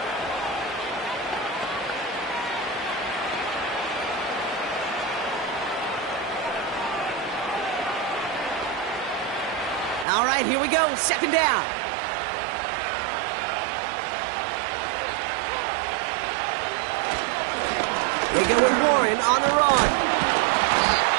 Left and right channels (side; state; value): left; drops out; at 10.1 s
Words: All right, here we go. Second down. They go with Warren on the run.